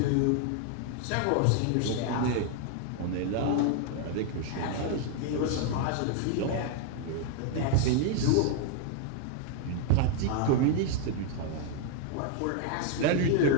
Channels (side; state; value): both; different; correlation 0.00